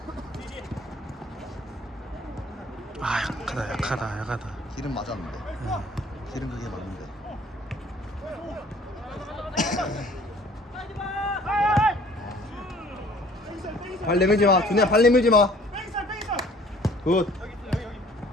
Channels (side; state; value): both; normal; correlation 0.54